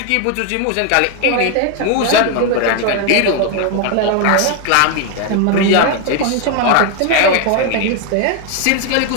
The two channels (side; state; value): both; different; correlation 0.01